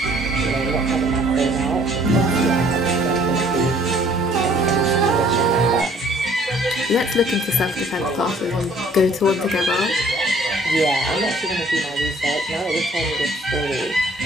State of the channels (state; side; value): normal; both; correlation 0.58